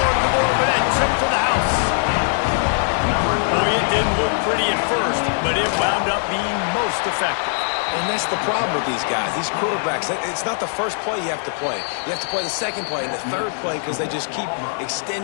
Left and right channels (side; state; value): right; silent; digital silence